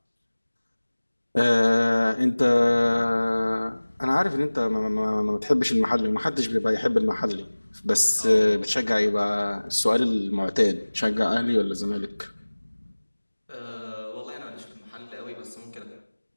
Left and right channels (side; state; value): both; inverted; correlation -1.00